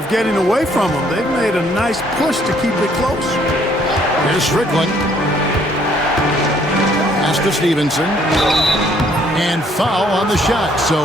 getting away from them. They've made a nice push to keep it close. Here's Strickland. Pass to Stevenson. And foul on the shot,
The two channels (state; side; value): normal; both; correlation 0.64